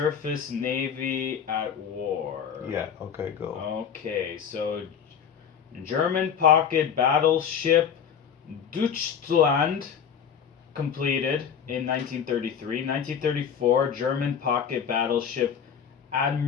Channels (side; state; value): right; quieter; 7.7 dB